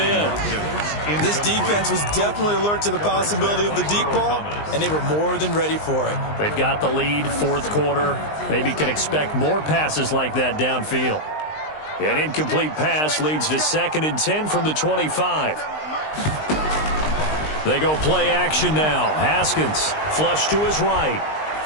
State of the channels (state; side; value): late; right; 19 ms